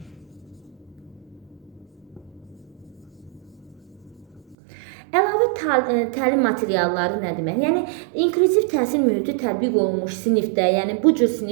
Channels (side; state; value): left; drops out; at 4.5 s